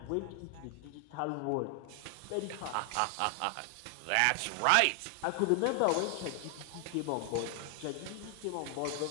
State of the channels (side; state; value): both; different; correlation 0.00